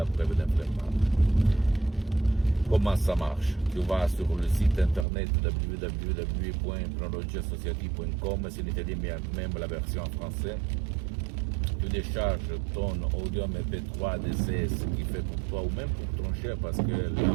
preuve d'un flemmard. Comment ça marche? Tu vas sur le site internet www.hypnologieassociative.com, c'est en italien, mais même la version en français. tu décharges ton audio MP3 DCS qui fait pour toi ou même pour ton cher, parce que la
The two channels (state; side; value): drops out; left; at 5.1 s